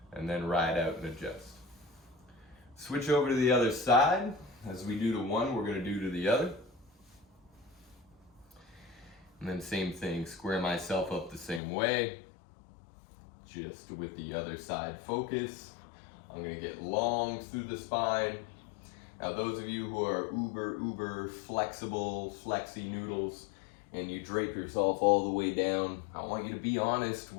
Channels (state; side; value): drops out; right; at 11.6 s